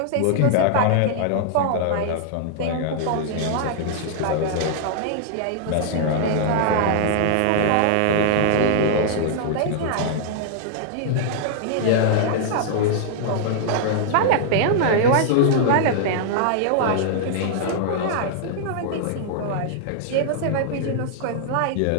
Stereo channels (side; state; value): both; different; correlation -0.01